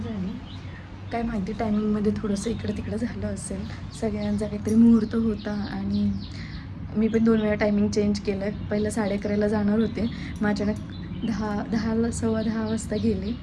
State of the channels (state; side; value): identical; both; correlation 1.00